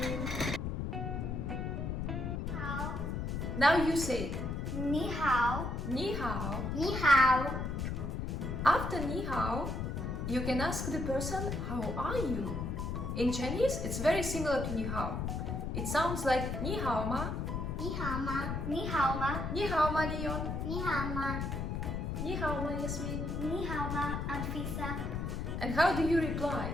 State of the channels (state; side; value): noise; left; rumble, 2 dB below the sound